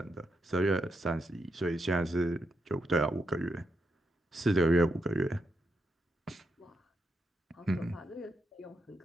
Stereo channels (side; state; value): both; normal; correlation 0.83